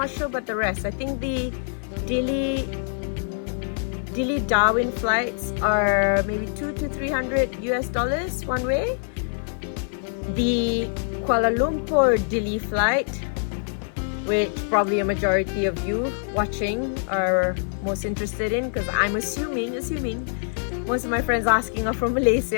sure about the rest. I think the Dili Darwin flights are maybe $200 to $300 one way. The Kuala Lumpur Dili flight, which probably a majority of you watching are most interested in, because I'm assuming most of my friends asking are from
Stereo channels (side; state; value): right; silent; 56 dB below the other